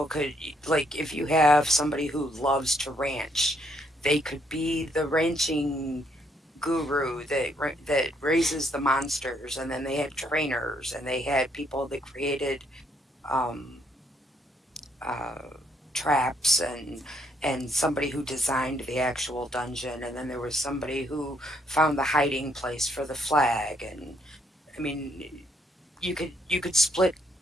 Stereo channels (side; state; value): both; normal; correlation 0.71